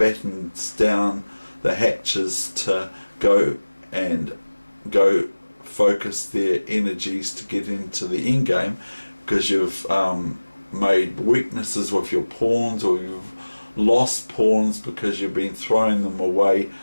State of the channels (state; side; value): inverted; both; correlation -1.00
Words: down the hatches to go focus their energies to get into the end game, because you've made weaknesses with your pawns, or you've lost pawns because you've been throwing them away